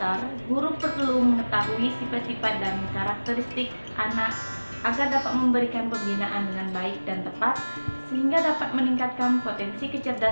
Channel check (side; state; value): both; inverted; correlation -1.00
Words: guru perlu mengetahui sifat-sifat dan karakteristik anak agar dapat memberikan pembinaan dengan baik dan tepat, sehingga dapat meningkatkan potensi